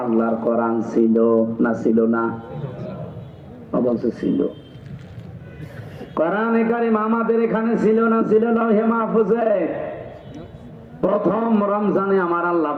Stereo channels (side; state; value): both; identical; correlation 1.00